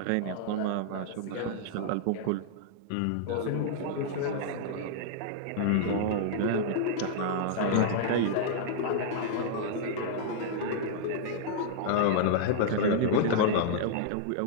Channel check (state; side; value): different; both; correlation -0.01